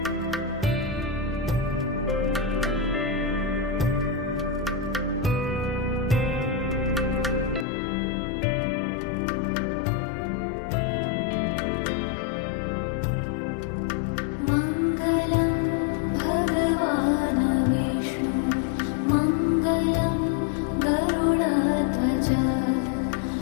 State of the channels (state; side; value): drops out; right; at 7.7 s